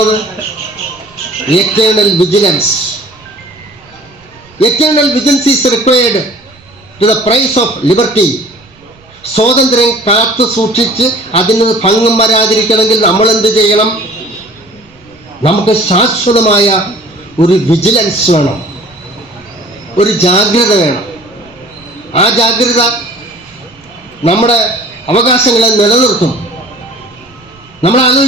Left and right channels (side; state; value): right; noise; rumble, 28 dB below the sound